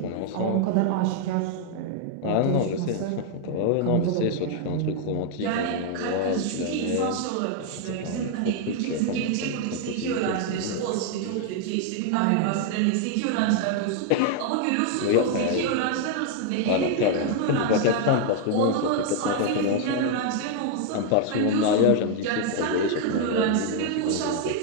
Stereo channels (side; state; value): both; different; correlation 0.00